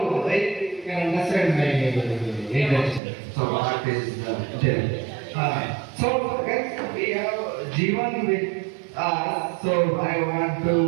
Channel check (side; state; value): left; drops out; at 3.0 s